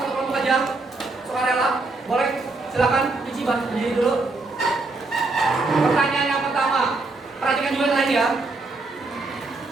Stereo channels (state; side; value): quieter; left; 3.3 dB